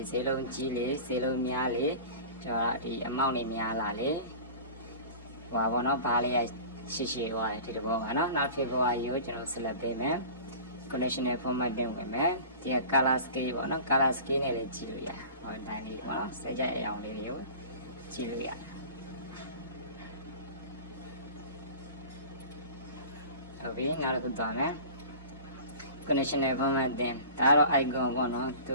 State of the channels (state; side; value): inverted; both; correlation -0.38